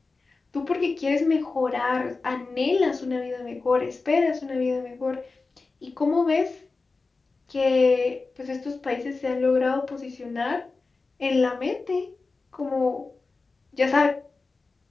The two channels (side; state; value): right; quieter; 3.9 dB